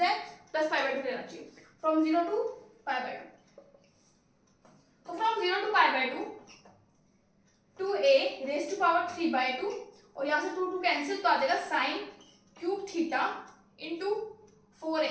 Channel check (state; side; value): identical; both; correlation 1.00